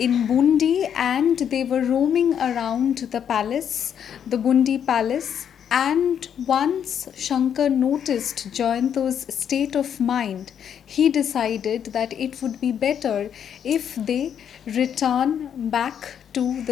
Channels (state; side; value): quieter; right; 8.6 dB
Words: Bundi and they were roaming around the palace, the Bundi palace. And once Shankar noticed Jayanto's state of mind, he decided that it would be better if they return back to